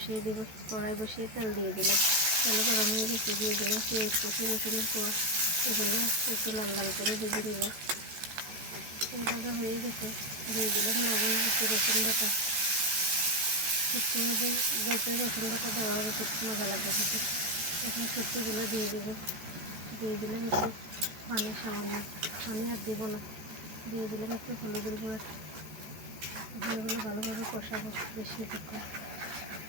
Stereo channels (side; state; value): left; late; 14 ms